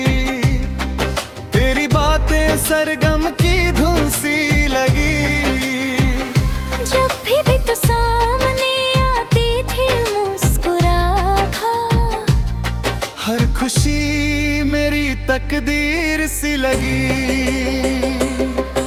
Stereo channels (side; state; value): both; identical; correlation 1.00